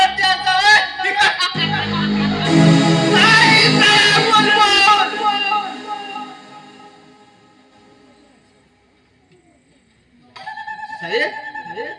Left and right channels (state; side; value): identical; both; correlation 1.00